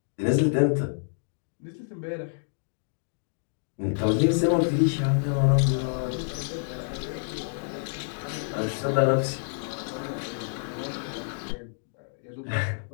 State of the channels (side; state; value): right; silent; digital silence